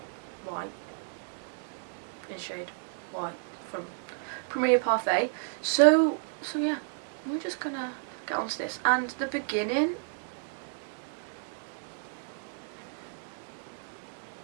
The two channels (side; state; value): left; silent; digital silence